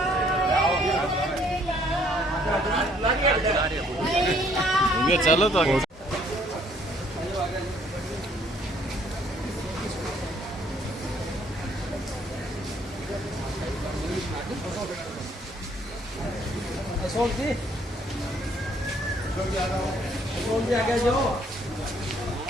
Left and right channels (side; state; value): both; normal; correlation 0.64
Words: ये चलो तो आगे। अशोक जी आगे जाओ।